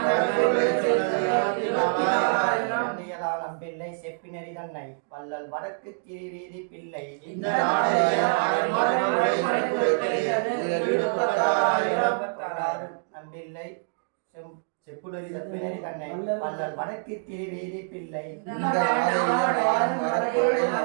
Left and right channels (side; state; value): left; silent; digital silence